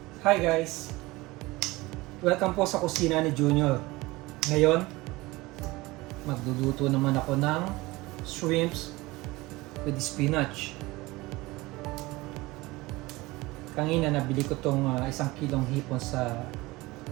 Hi guys! Welcome po sa kusina ni Junior. Ngayon, magluluto naman ako ng shrimps with spinach. Kanina nabili ko tong 1 kilong hipon sa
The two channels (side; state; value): left; quieter; 21.1 dB